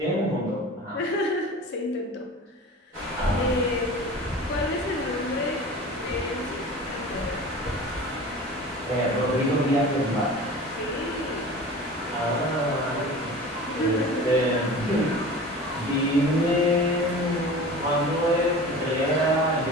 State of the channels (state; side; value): normal; both; correlation 0.37